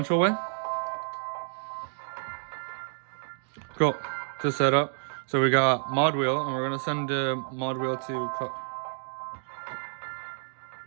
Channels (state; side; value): silent; left; digital silence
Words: way. Cool. To set up. So we got mod wheel, and we're gonna send the mod wheel to